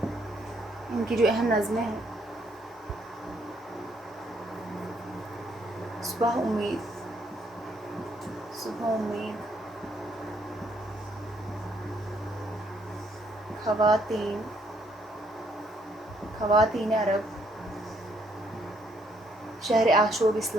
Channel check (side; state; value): both; normal; correlation 0.70